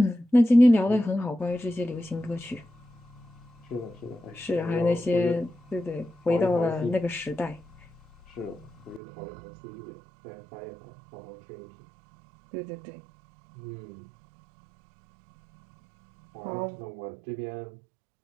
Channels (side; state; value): left; drops out; at 9.0 s